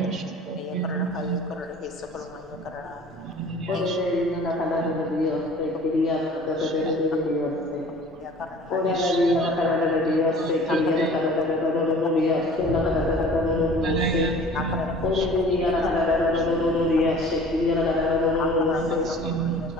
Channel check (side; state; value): both; normal; correlation 0.46